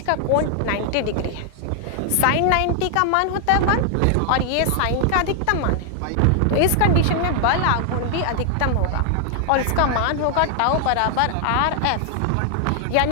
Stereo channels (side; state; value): both; different; correlation 0.00